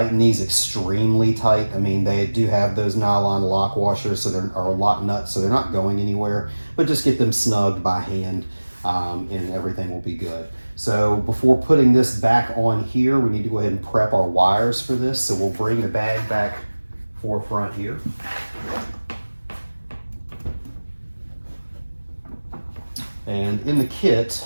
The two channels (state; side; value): inverted; both; correlation -1.00